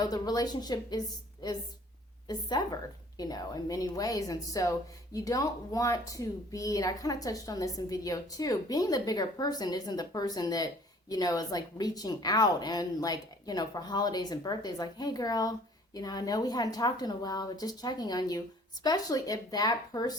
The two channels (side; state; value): both; normal; correlation 0.54